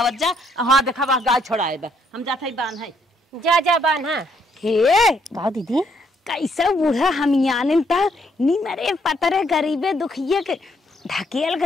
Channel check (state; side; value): normal; both; correlation 0.71